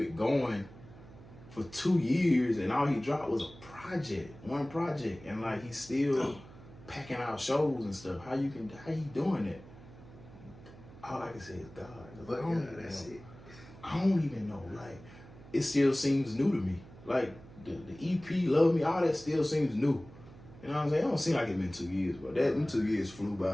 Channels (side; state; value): right; noise; hum, 19 dB below the sound